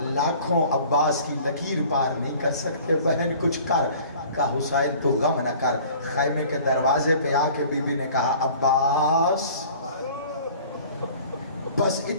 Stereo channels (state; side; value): inverted; both; correlation -0.48